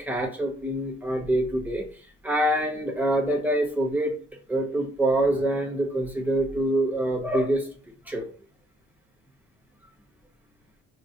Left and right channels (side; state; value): both; normal; correlation 0.70